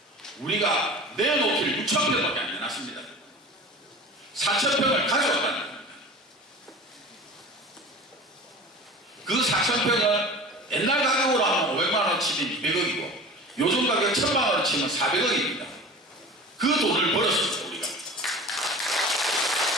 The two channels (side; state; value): both; normal; correlation 0.37